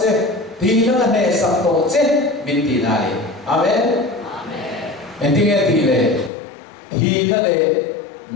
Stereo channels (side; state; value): right; drops out; at 6.3 s